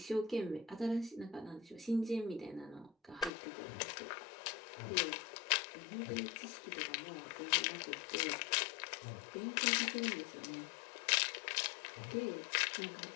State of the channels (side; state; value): right; drops out; at 3.3 s